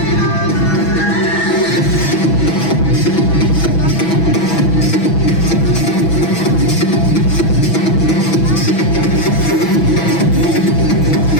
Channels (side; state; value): right; late; 6.1 ms